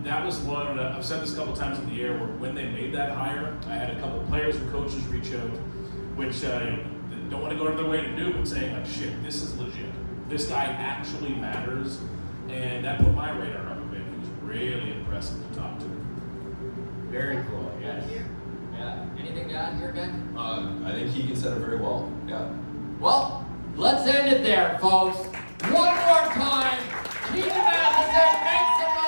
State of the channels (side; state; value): both; inverted; correlation -1.00